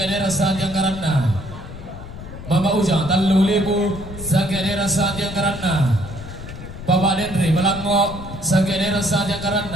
saat yang karena Bapak Ujang 3.000 Sanggederan saat yang karena Bapak Dendri Melangok Sanggederan saat yang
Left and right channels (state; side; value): noise; left; rumble, 12 dB below the sound